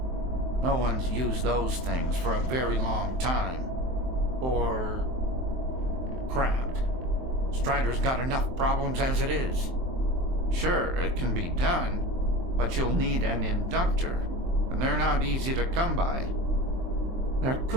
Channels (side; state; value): left; late; 23 ms